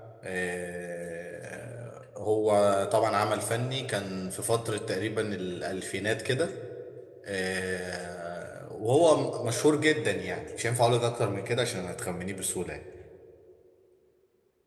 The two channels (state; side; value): identical; both; correlation 1.00